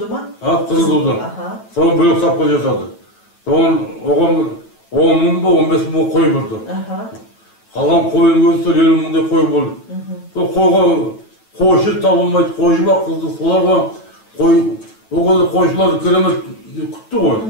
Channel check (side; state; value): right; late; 9.1 ms